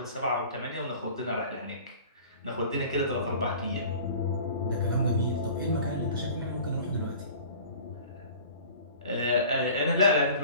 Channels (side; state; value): both; inverted; correlation -0.44